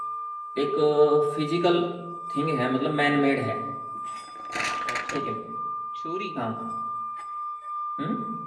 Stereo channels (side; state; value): both; identical; correlation 1.00